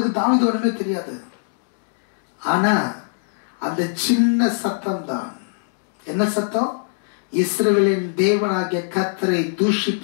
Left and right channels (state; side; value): silent; right; digital silence